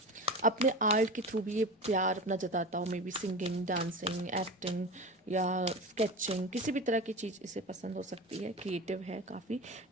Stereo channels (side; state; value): both; normal; correlation 0.29